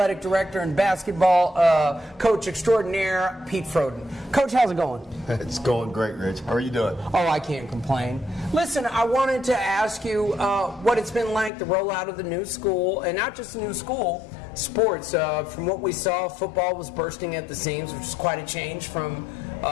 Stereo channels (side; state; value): right; drops out; at 11.5 s